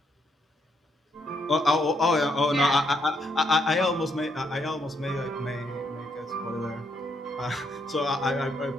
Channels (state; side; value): normal; both; correlation 0.75